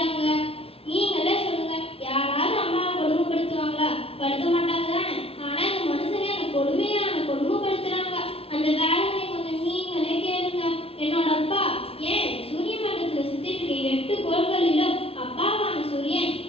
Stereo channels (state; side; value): late; right; 0.28 ms